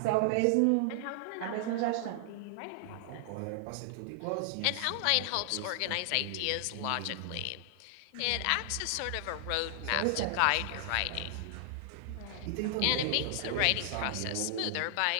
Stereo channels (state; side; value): different; both; correlation -0.01